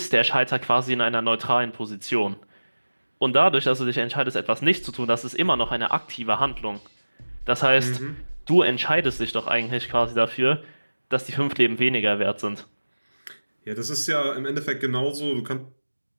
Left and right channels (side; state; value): both; inverted; correlation -1.00